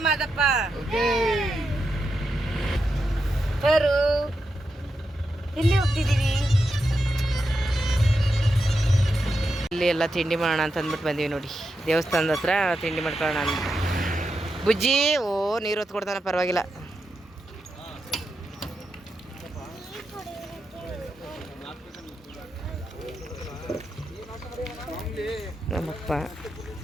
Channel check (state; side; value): normal; both; correlation 0.87